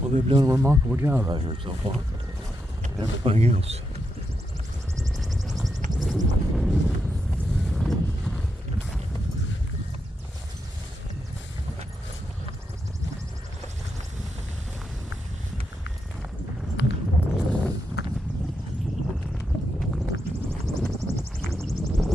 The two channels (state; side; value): normal; both; correlation 0.83